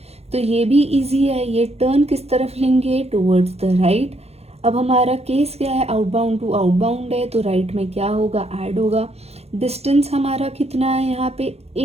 तो ये भी इजी है, ये टर्न किस तरफ लेंगे टूवर्ड्स द राइट। अब हमारा केस क्या है, आउटबाउंड टू आउटबाउंड है तो राइट में क्या होगा, ऐड होगा। डिस्टेंस हमारा कितना है यहाँ पे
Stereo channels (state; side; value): late; left; 0.30 ms